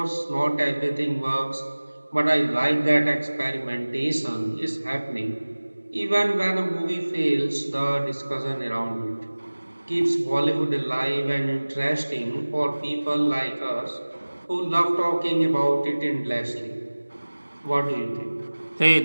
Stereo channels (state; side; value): inverted; both; correlation -1.00